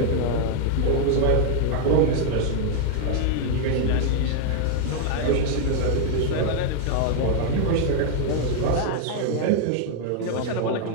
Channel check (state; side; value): different; both; correlation 0.00